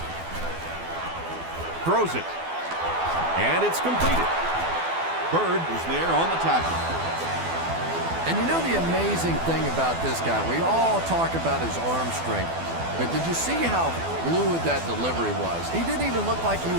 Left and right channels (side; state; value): left; late; 12 ms